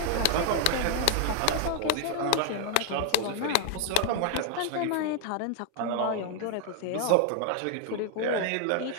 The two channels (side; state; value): both; different; correlation 0.01